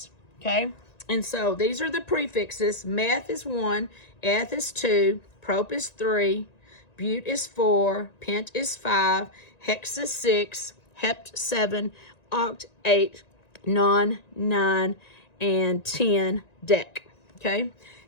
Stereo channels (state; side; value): late; right; 1.9 ms